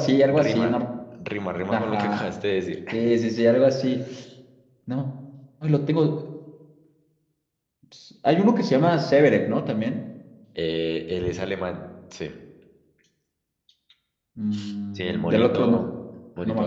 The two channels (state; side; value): identical; both; correlation 1.00